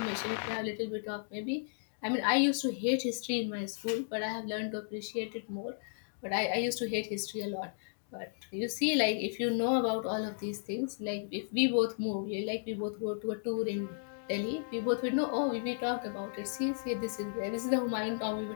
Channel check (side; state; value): right; silent; digital silence